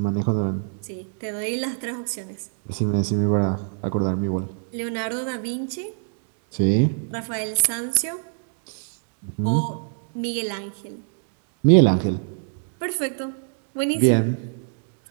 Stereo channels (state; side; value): silent; left; digital silence